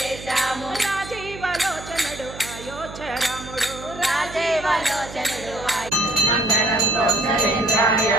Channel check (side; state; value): right; noise; hum, 14 dB below the sound